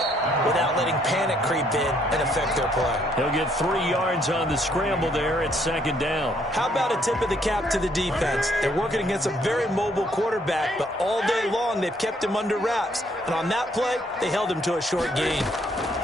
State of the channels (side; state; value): both; normal; correlation 0.68